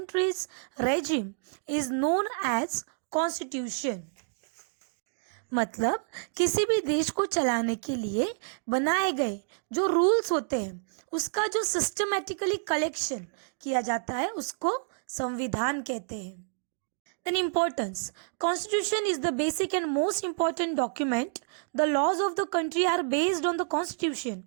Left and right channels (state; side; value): silent; left; digital silence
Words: regime is known as constitution. मतलब किसी भी देश को चलाने के लिए बनाए गए जो रूल्स होते हैं उसका जो सिस्टमैटिकली कलेक्शन किया जाता है उसको संविधान कहते हैं. Then importance. Constitution is the basic and most important document. The laws of the country are based on the constitution.